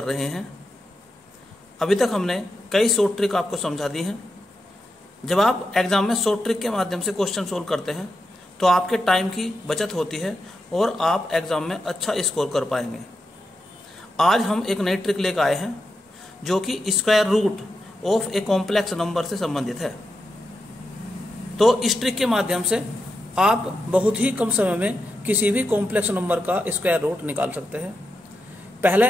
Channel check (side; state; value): both; normal; correlation 0.87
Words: रहे हैं। अभी तक हमने कई शॉर्ट ट्रिक आपको समझा दी हैं। जब आप एग्जाम में शॉर्ट ट्रिक के माध्यम से क्वेश्चन सोल्व करते हैं तो आपके टाइम की बचत होती है और आप एग्जाम में अच्छा स्कोर कर पाएंगे। आज हम एक नई ट्रिक लेकर आए हैं जो कि square root of a complex number से संबंधित है। तो इस ट्रिक के माध्यम से आप बहुत ही कम समय में किसी भी कॉम्प्लेक्स नंबर का स्क्वायर रूट निकाल सकते हैं। पहले